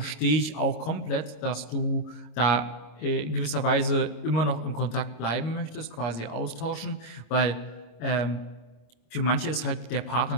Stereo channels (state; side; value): late; right; 26 ms